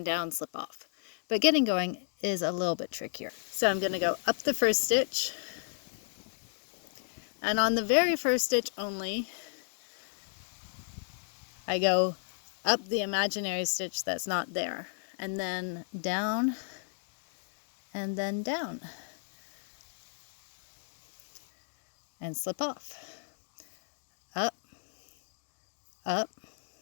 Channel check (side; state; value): right; silent; digital silence